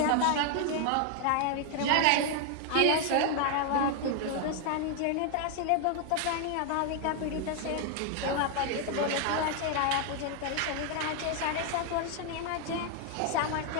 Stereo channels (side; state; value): both; different; correlation 0.00